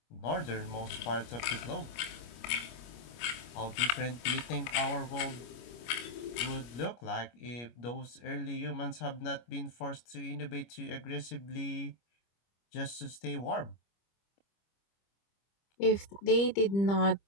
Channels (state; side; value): late; right; 25 ms